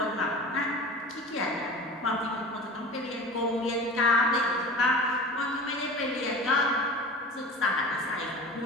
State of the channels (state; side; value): normal; both; correlation 0.36